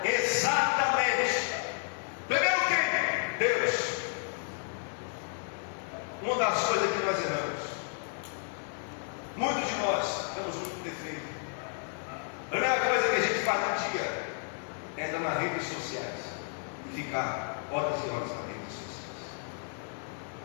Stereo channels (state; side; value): silent; right; 57 dB below the other